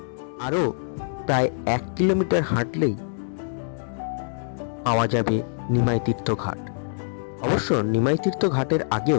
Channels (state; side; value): silent; right; digital silence